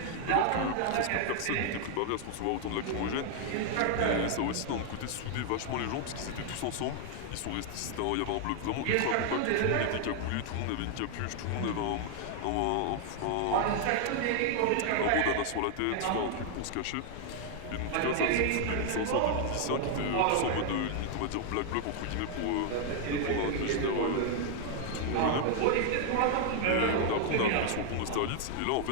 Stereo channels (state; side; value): different; both; correlation 0.00